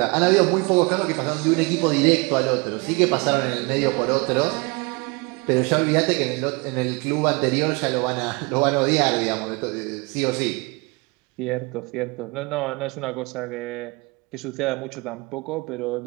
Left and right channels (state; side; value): quieter; left; 28.0 dB